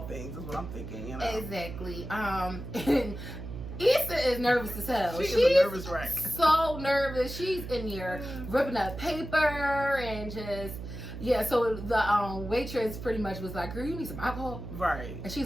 things. Is what I'm thinking, you know. Exactly. And Issa is nervous as hell. She's a nervous wreck. So nervous. She's in here ripping up paper and just so the waitress pretty much was like, girl, you need some alcohol? Right. And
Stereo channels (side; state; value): right; noise; hum, 9 dB below the sound